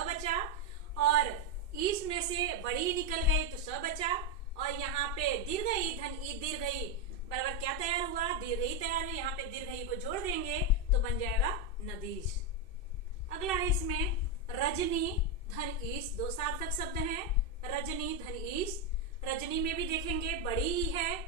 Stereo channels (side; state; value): right; late; 2.6 ms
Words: बचा, और ईश में से बड़ी निकल गई तो स बचा, और यहाँ पे दीर्घ ई धन ई दीर्घ ई बराबर क्या तैयार हुआ, दीर्घ ई तैयार हुआ। यहाँ पे दीर्घ ई को जोड़ देंगे तो बन जाएगा नदीश। अगला है इसमें रजनी धन ईश। दो सार्थक शब्द हैं, रजनी धन ईश। रजनी में भी देखेंगे बड़ी ई है